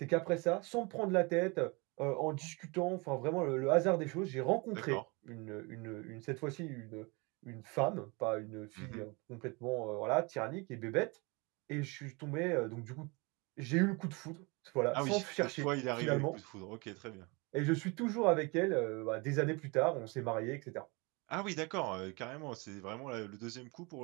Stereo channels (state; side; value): quieter; left; 28.0 dB